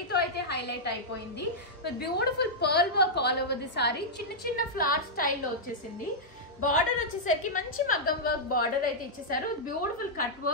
అయితే హైలైట్ అయిపోయింది. With beautiful pearl work all over the sorry. చిన్న చిన్న ఫ్లవర్ స్టైల్లో వచ్చేసింది. బార్డర్ వచ్చేసరికి మంచి మగ్గం వర్క్ బార్డర్ అయితే ఇచ్చేసారు. Beautiful cut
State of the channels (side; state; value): both; normal; correlation -0.08